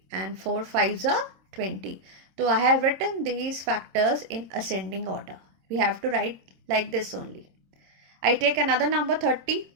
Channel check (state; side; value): late; left; 26 ms